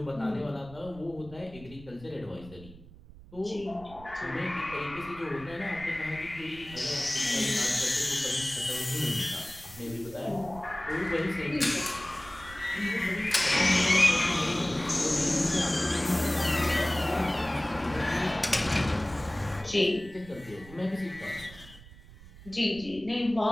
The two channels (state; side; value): noise; right; rumble, 19 dB below the sound